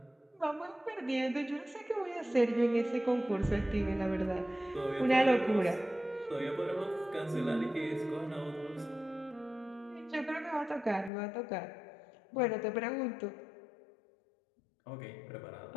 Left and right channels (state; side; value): drops out; right; at 11.1 s